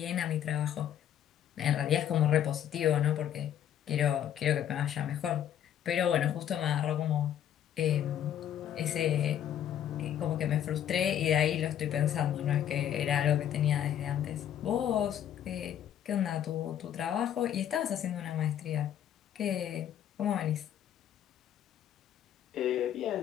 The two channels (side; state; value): right; quieter; 10.3 dB